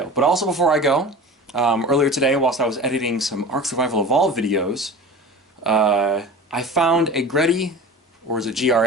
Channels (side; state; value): both; normal; correlation 0.35